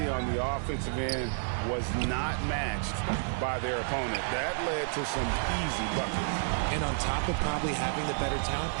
on the offensive end was not matched by their opponent. That led to some easy buckets. And on top of probably having the better talent,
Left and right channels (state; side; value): silent; left; digital silence